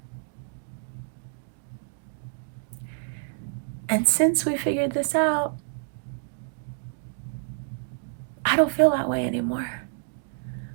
And since we figured this out, I don't feel that way anymore.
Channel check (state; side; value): silent; left; digital silence